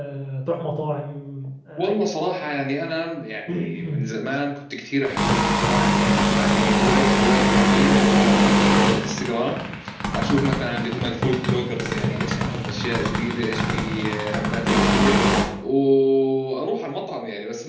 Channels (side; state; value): both; identical; correlation 1.00